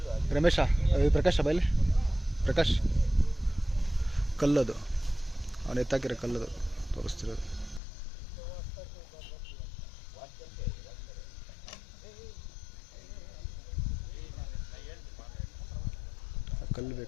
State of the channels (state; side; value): drops out; right; at 7.8 s